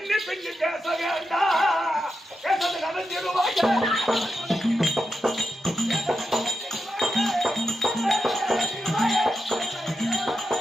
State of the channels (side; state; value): both; normal; correlation 0.87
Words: பின்னி பேச வேண்டாம். பேசது நடத்திடுவாங்க.